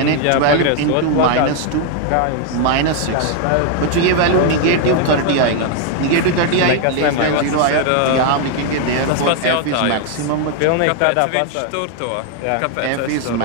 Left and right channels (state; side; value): different; both; correlation 0.00